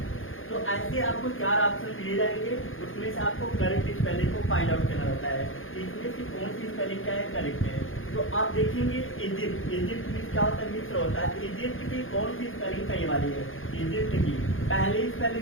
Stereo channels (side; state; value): right; late; 0.59 ms